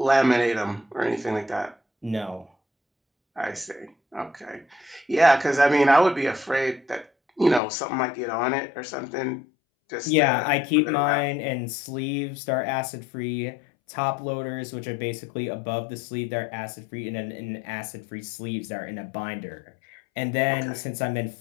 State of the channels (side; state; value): right; drops out; at 7.6 s